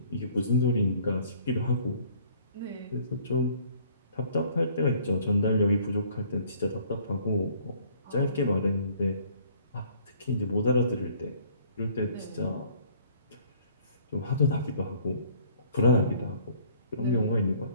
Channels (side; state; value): both; inverted; correlation -0.57